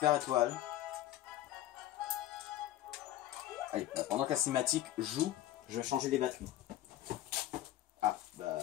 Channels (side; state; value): right; quieter; 13.6 dB